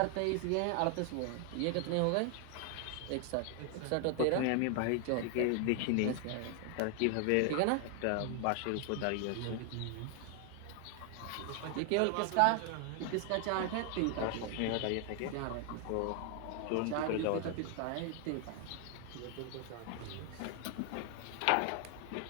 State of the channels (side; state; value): both; different; correlation 0.00